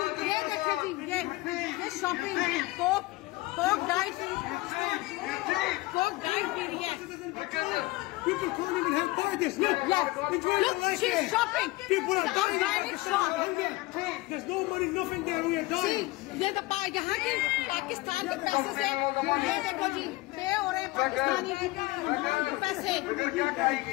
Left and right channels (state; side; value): quieter; right; 20.4 dB